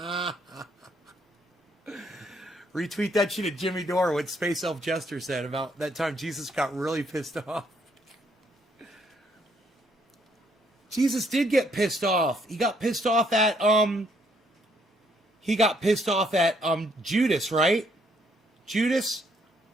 Retweet that shit at Jimmy Dore, what Space Elf Jester said about that time Jesus got really pissed off. Jesus did get pissed off. He got pissed off at Judas, right? Judas?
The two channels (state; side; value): normal; both; correlation 0.70